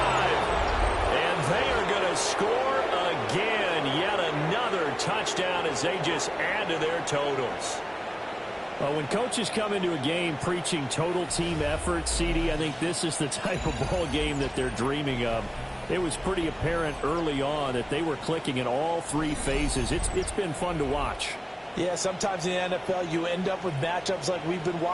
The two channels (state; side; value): identical; both; correlation 1.00